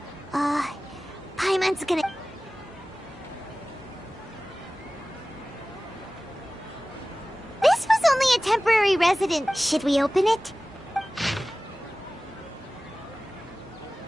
Paimon's gonna... This was only a temporary resident. Should we open it?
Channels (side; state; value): both; normal; correlation 0.97